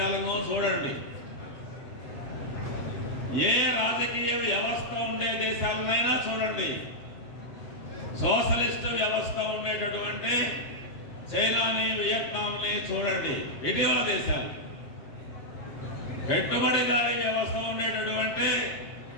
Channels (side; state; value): right; late; 7.2 ms